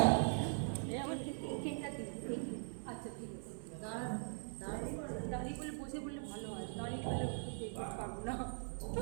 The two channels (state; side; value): silent; left; 50 dB below the other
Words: আচ্ছা ঠিক আছে, দাঁড়িয়ে বলে বসে বললে ভালো হয়, দাঁড়িয়ে বলে বলতে পারবো না,